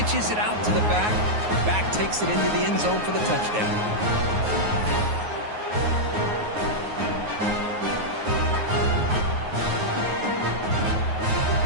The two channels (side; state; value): left; late; 9.5 ms